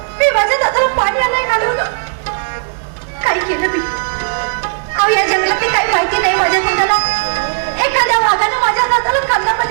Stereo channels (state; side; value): silent; left; digital silence